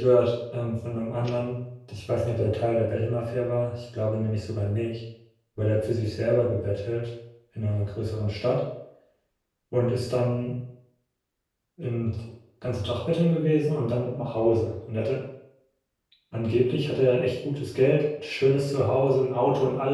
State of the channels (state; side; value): identical; both; correlation 1.00